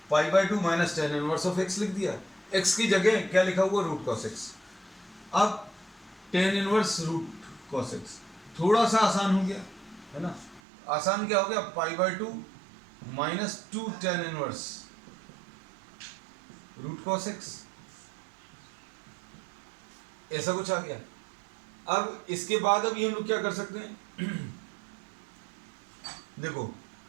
pi by 2 minus tan inverse of x लिख दिया। x की जगह क्या लिखा हुआ, रूट cos x। अब tan inverse root cos x थोड़ा सा आसान हो गया है ना। आसान क्या हो गया, pi by 2 minus 2 tan inverse root cos x, ऐसा कुछ आ गया। अब इसके बाद अभी हम लोग क्या कर सकते हैं देखो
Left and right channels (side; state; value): left; drops out; at 10.6 s